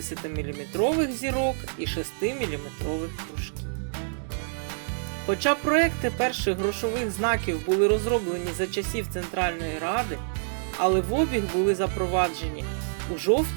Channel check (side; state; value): left; silent; digital silence